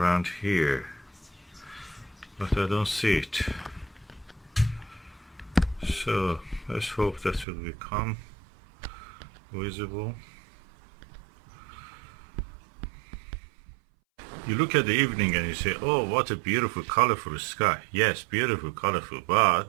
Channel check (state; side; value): drops out; left; at 7.5 s